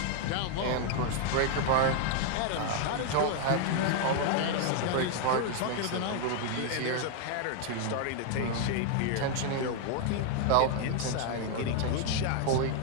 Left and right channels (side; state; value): both; different; correlation 0.00